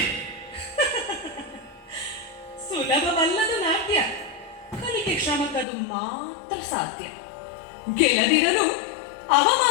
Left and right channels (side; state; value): right; drops out; at 5.7 s